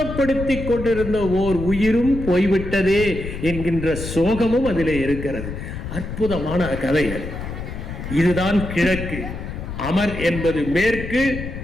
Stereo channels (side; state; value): left; noise; rumble, 7 dB below the sound